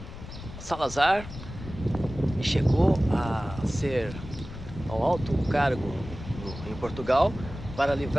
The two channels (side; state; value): left; noise; rumble, 12 dB below the sound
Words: Salazar chegou a ser ao alto cargo em Portugal para